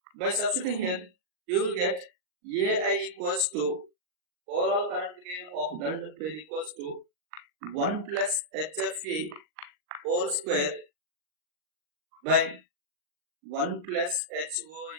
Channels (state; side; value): late; left; 39 ms